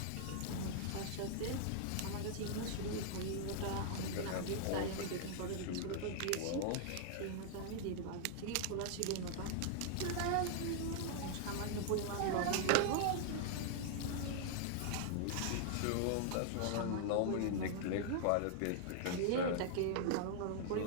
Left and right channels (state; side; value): different; both; correlation -0.01